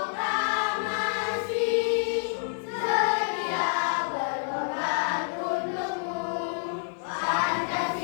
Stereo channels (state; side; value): silent; right; digital silence